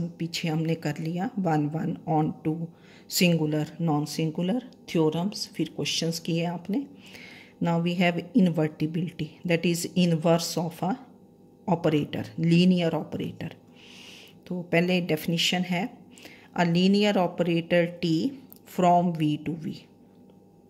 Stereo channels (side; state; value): both; identical; correlation 1.00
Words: पीछे हमने कर लिया, 1 onto, singular non singular, theorems, फिर क्वेश्चंस किए आपने। Now we have invertibility, that is inverse of a operator, linear operator. तो पहले डेफिनेशन है a linear operator T from V to V.